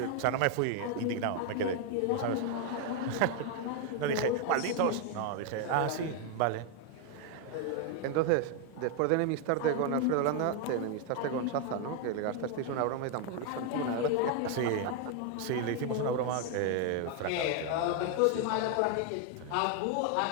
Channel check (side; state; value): both; different; correlation 0.01